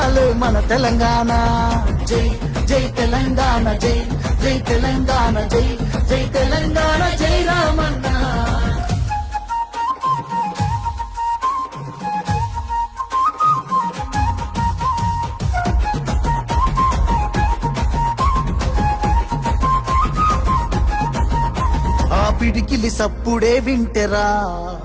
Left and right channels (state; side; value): identical; both; correlation 1.00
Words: మన తెలంగాణ. జై జై తెలంగాణ, జై జై తెలంగాణ, జై జై తెలంగాణ, జై రామన్న. పిడికిలి సప్పుడే వింటెరా